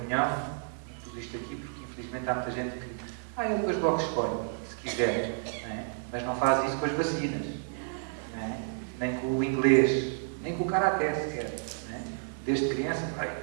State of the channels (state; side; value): silent; left; 57 dB below the other